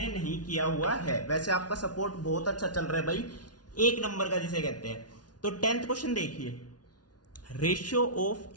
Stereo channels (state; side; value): late; right; 0.69 ms